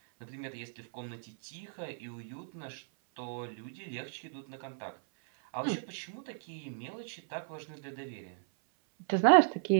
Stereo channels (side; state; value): left; silent; 54 dB below the other